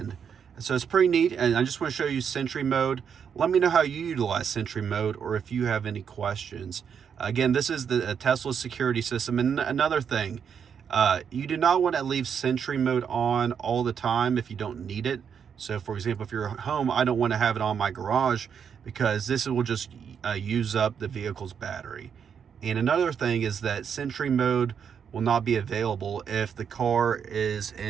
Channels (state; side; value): quieter; left; 7.4 dB